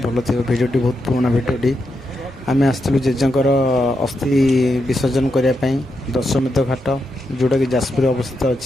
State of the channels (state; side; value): normal; both; correlation 0.84